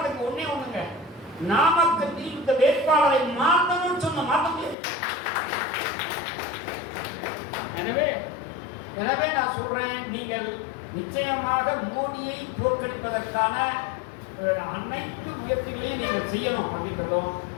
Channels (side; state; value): right; drops out; at 4.8 s